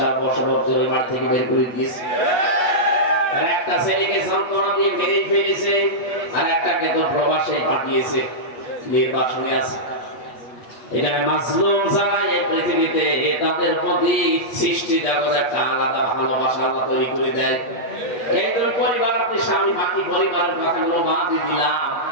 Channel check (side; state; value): right; late; 8.3 ms